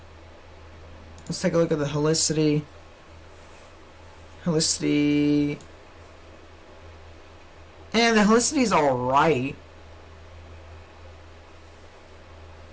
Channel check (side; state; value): both; identical; correlation 1.00